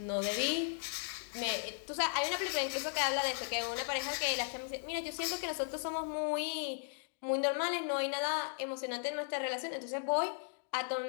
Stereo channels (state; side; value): silent; right; digital silence